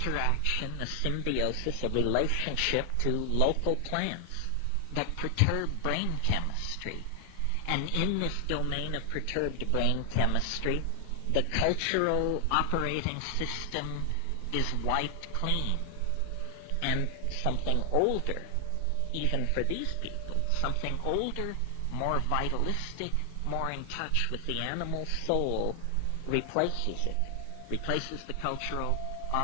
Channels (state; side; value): different; both; correlation 0.00